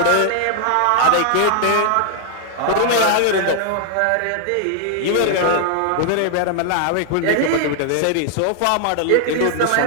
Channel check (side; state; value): both; different; correlation 0.00